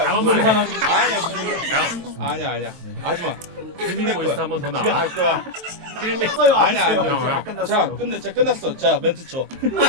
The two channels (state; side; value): late; left; 23 ms